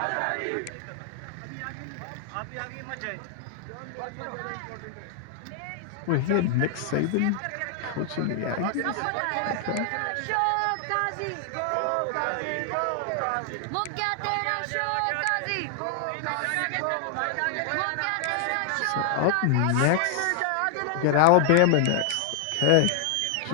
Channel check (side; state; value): both; different; correlation 0.00